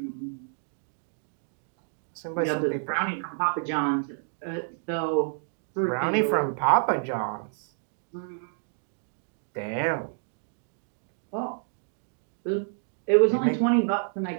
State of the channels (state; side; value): silent; left; digital silence